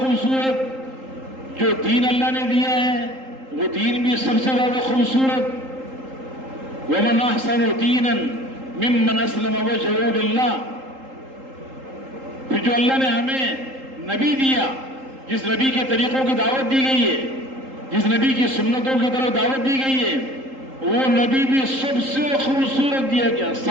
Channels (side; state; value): left; late; 3.8 ms